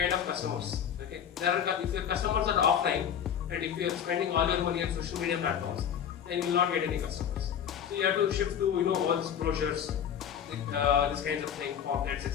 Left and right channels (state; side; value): quieter; right; 8.7 dB